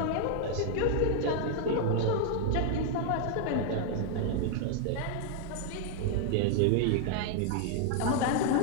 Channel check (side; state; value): both; different; correlation 0.00